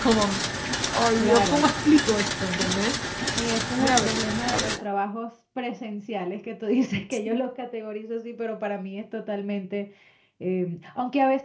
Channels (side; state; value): both; identical; correlation 1.00